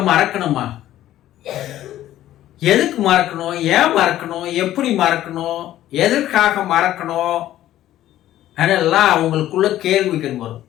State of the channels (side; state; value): right; quieter; 13.3 dB